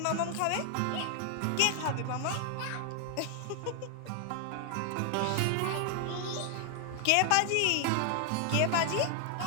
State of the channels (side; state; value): both; different; correlation 0.00